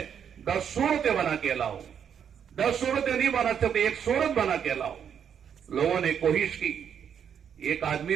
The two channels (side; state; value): left; quieter; 8.1 dB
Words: 10 سورتیں بنا کے لاؤ. 10 سورتیں نہیں بنا سکتے، 1 سورت بنا کے لاؤ. لوگوں نے کوشش کی. ایک آدمی